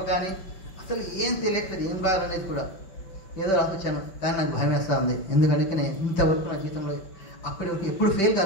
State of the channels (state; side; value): late; right; 5.2 ms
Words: కానీ అసలు ఏం తెలియట్లేదు, ఏం రాయాలనేది కూడా. ఏదో రాసొచ్చాను కానీ నాకు భయం వేస్తూ ఉంది, ఎందుకంటే నేను ఇంతవరకు నా జీవితంలో అప్పటి వరకు ఎప్పుడు ఫెయిల్